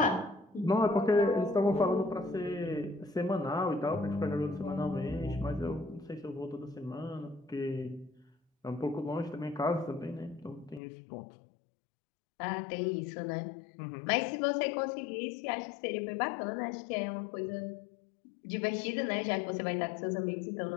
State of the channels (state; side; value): drops out; right; at 10.8 s